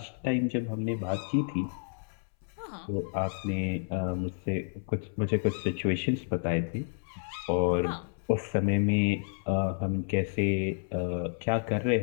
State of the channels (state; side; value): silent; right; 58 dB below the other